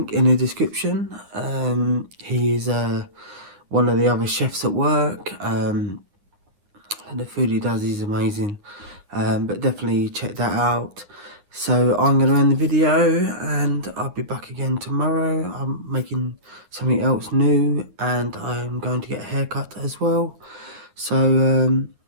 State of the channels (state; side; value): late; left; 9.4 ms